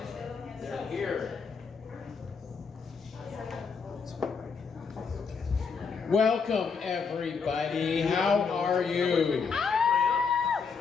They're here. Welcome, everybody. How are you?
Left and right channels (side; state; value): right; quieter; 5.5 dB